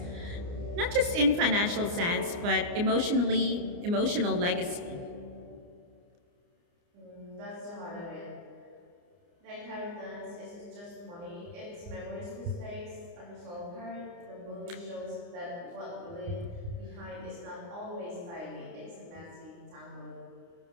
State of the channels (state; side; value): late; left; 29 ms